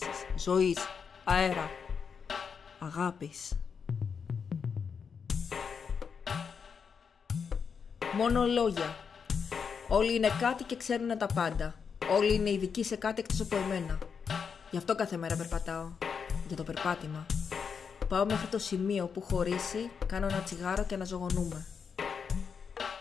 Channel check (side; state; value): right; quieter; 6.3 dB